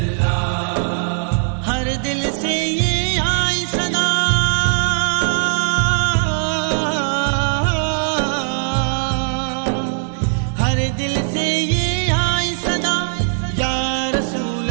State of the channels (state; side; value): silent; left; 59 dB below the other